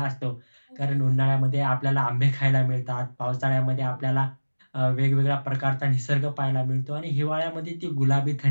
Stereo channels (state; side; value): inverted; both; correlation -1.00